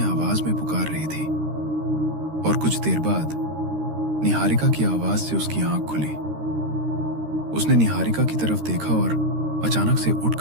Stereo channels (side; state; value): left; late; 13 ms